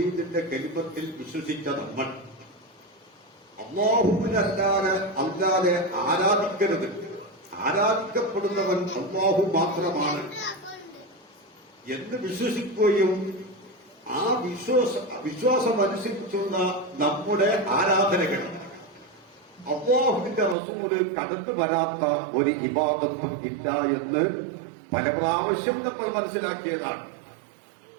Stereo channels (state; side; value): drops out; left; at 20.6 s